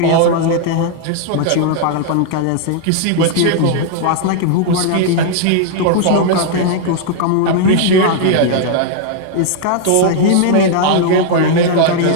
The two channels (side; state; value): both; different; correlation -0.01